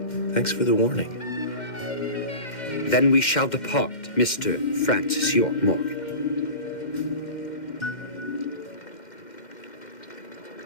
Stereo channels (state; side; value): late; right; 2.1 ms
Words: Thanks for the warning. Then we shall depart, Mr. Francis York Morgan.